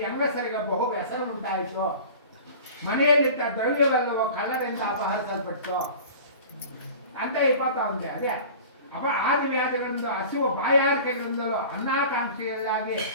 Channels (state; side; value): inverted; both; correlation -0.40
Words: ಹೆಂಗಸರಿಗೆ ಬಹು ವ್ಯಸನ ಉಂಟಾಯಿತು. ಮನೆಯಲ್ಲಿದ್ದ ದ್ರವ್ಯವೆಲ್ಲವೂ ಕಳ್ಳರಿಂದ ಅಪಹರಿಸಲ್ಪಟ್ಟು ಅಂತ ಅವನಿಗೆ ಅದೇ ಆದಿವ್ಯಾಧಿಗಳಿಂದ ಹಸಿವು ಬಾಯಾರಿಕೆಗಳಿಂದಲೂ ಅನ್ನಾಕಾಂಕ್ಷೆಯಲ್ಲಾಗಿ